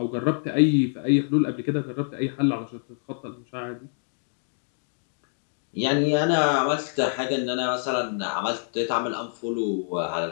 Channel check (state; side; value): silent; right; digital silence